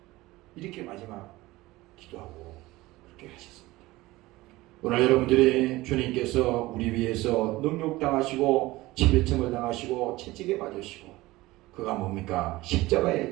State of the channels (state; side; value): quieter; left; 19.1 dB